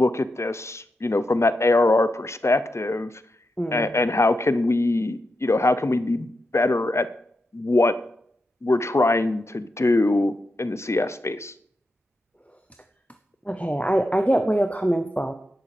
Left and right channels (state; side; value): normal; both; correlation 0.87